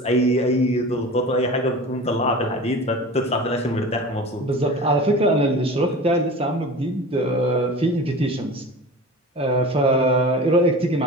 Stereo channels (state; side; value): normal; both; correlation 0.35